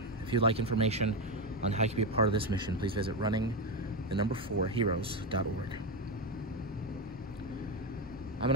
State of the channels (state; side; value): normal; both; correlation 0.11